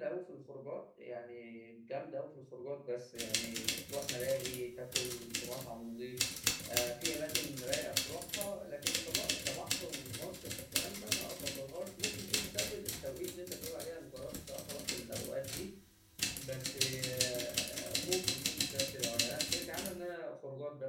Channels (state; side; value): identical; both; correlation 1.00